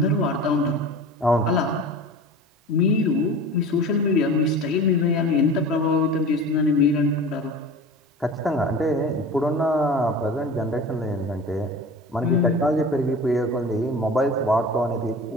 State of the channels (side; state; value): both; normal; correlation 0.36